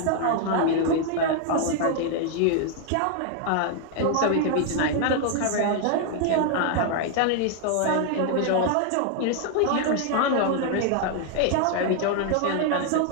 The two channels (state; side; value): different; both; correlation 0.00